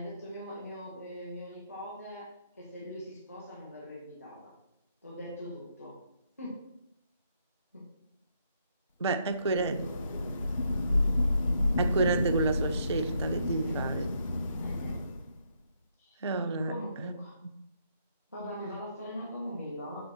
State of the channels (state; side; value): inverted; both; correlation -0.75